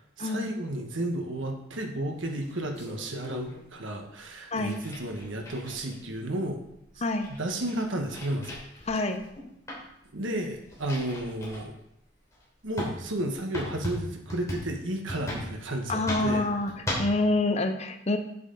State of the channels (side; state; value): both; normal; correlation 0.49